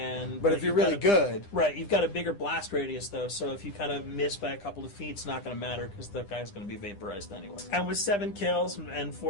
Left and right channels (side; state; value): right; late; 9.9 ms